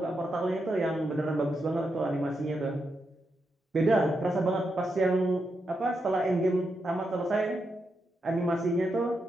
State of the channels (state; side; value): normal; both; correlation 0.84